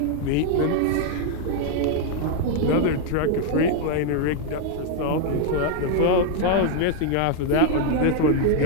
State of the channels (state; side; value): different; both; correlation 0.00